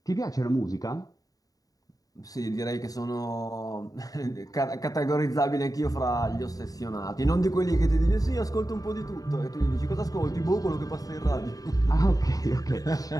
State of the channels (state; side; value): late; right; 0.18 ms